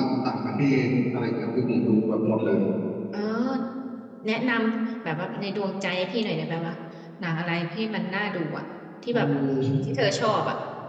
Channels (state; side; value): identical; both; correlation 1.00